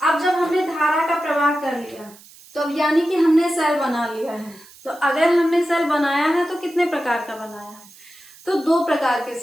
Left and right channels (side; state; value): right; noise; hiss, 23 dB below the sound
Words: अब जब हमने धारा का प्रवाह कर लिया तो अब यानी कि हमने सेल बना लिया है। तो अगर हमने सेल बनाया है तो कितने प्रकार का बनाया है, तो 2 प्रकार के